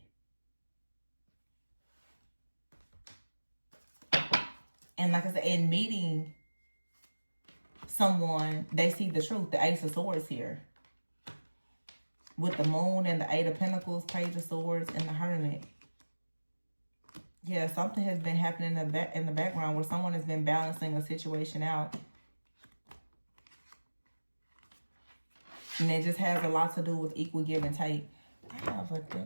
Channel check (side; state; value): both; inverted; correlation -1.00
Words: And like I said, in meeting someone, they see the truth. The Ace of Swords here, with the Moon and the Eight of Pentacles, Page of Swords, and the Hermit. Yeah, something has been happening in the background where someone has been balancing a situation out. And it just has a lot to do with equal give and take. I have a